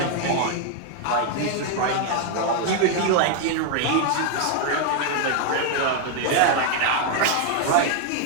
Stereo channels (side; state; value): both; different; correlation 0.00